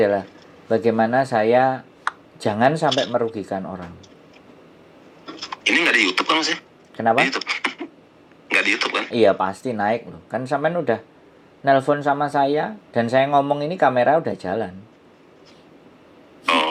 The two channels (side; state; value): both; identical; correlation 1.00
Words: bagaimana saya jangan sampai merugikan orang. Ini nggak di YouTube kan, Mas ya? Kenapa? Di YouTube. Nggak di YouTube kan? Iya pasti naik loh. Kan sampean udah nelpon sama saya dan saya ngomong ini kamera udah jalan.